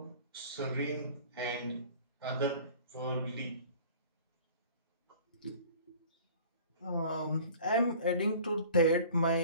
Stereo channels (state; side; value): inverted; both; correlation -0.46